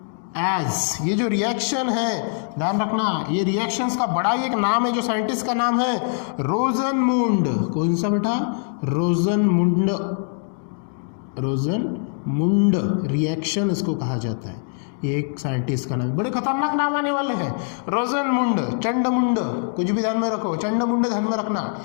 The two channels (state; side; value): silent; right; 64 dB below the other